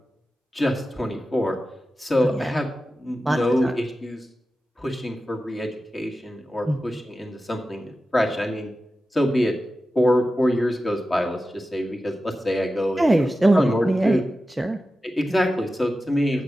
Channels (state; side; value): normal; both; correlation 0.93